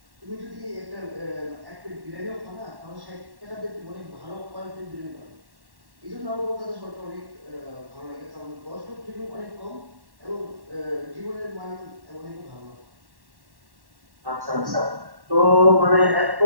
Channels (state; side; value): late; left; 1.1 ms